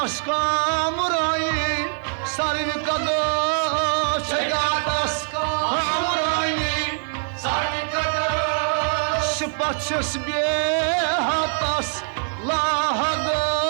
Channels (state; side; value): silent; left; 63 dB below the other